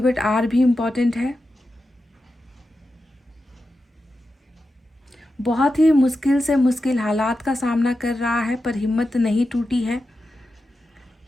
आर भी इम्पॉर्टेंट है। बहुत ही मुश्किल से मुश्किल हालात का सामना कर रहा है, पर हिम्मत नहीं टूटी है।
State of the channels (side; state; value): both; normal; correlation 0.90